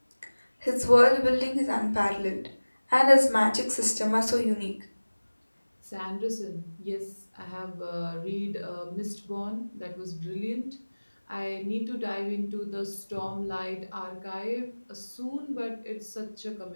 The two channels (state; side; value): inverted; both; correlation -1.00